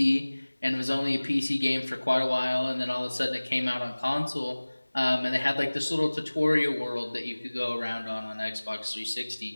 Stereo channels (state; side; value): inverted; both; correlation -1.00